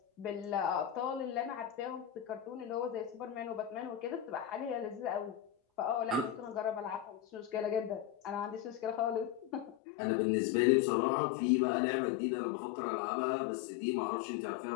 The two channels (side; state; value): right; drops out; at 9.8 s